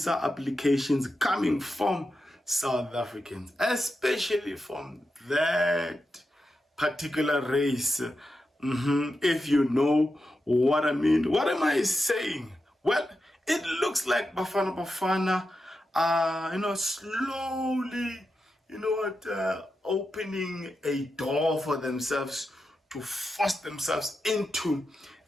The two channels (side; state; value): both; normal; correlation 0.89